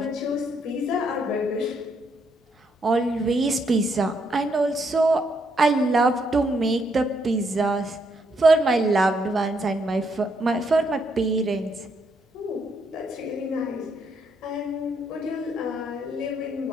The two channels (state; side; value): normal; both; correlation 0.75